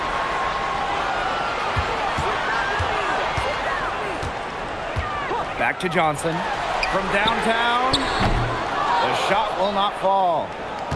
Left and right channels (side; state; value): both; identical; correlation 1.00